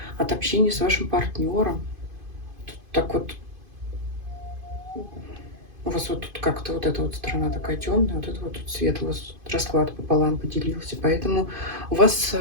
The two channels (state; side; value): late; left; 2.5 ms